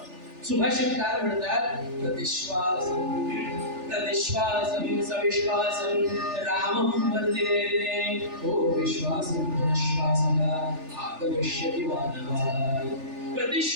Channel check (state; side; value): late; left; 3.4 ms